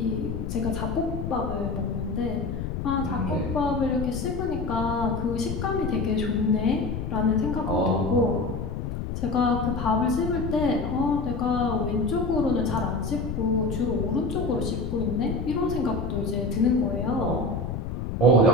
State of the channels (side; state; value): left; noise; rumble, 4 dB below the sound